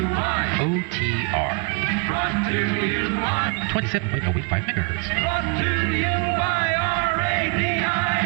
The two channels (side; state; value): left; quieter; 29.7 dB